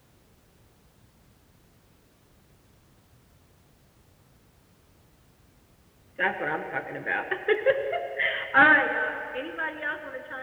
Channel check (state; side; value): identical; both; correlation 1.00